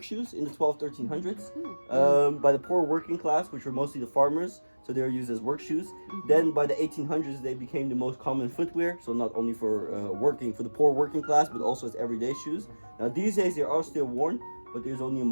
shoes in the 1300s by the poor working class, which were mostly the farmers. So they were used as work shoes. Then by the 1800s, they became the most common footwear. So not only for for the poor working class, but also as everyday shoes. Now these days they are still worn, but there's only a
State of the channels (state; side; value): inverted; both; correlation -1.00